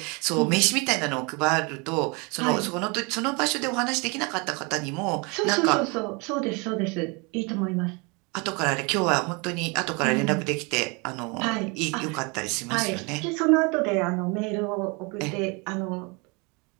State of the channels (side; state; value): left; quieter; 29.8 dB